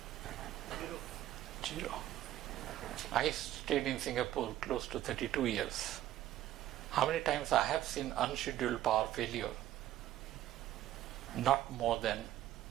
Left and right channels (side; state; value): left; quieter; 13.4 dB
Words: 0. I stayed in Singapore close to 32 years. How many times I have seen unscheduled power failure? Not more than